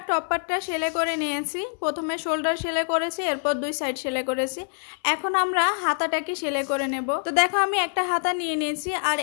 টপ পার্টটা সেলাই করে নিয়েছি। প্রথমে শোল্ডার সেলাই করেছি, এরপর 2 সাইড সেলাই করেছি। এখন আমরা হাতাটাকে সেলাই করে নেব। তো দেখো আমি একটা হাতা নিয়ে নিয়েছি, আর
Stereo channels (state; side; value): silent; right; 62 dB below the other